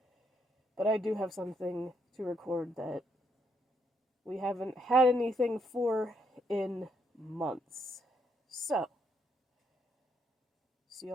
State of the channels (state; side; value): normal; both; correlation 0.75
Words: but I do have something to record that we haven't had anything for in months. So, see you